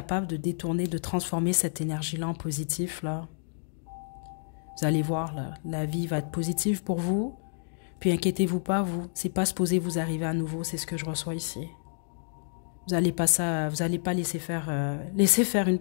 de détourner, de transformer cette énergie-là en positif, là, vous allez voir, là, la vie va être positive pour vous. Puis inquiétez-vous pas, vous, c'est pas supposé vous arriver à nouveau, c'est ce que je reçois ici. Vous n'allez pas laisser faire une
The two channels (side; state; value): right; silent; digital silence